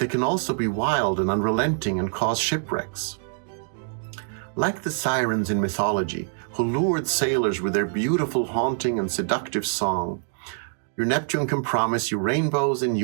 can also be wild and unrelenting and cause shipwrecks. Like the sirens in mythology, who lured sailors with their beautiful, haunting, and seductive song, your Neptune can promise you rainbows and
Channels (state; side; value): silent; left; digital silence